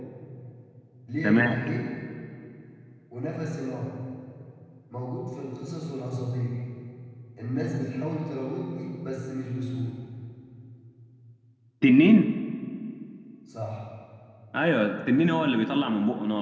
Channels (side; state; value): both; identical; correlation 1.00